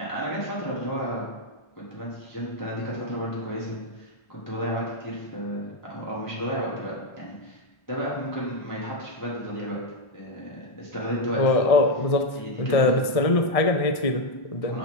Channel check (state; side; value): late; right; 1.6 ms